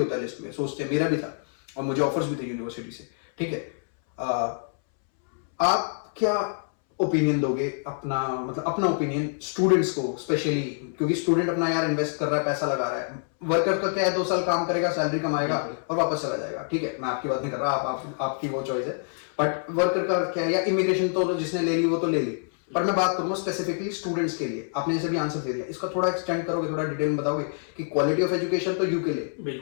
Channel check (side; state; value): right; silent; 61 dB below the other